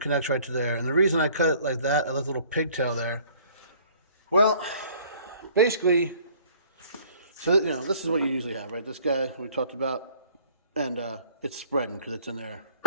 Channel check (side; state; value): both; inverted; correlation -0.55